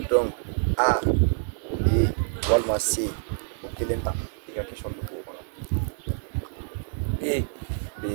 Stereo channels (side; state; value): left; silent; digital silence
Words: A B walima C o kelen ta i ka question bɛ k'o kɔnɔ.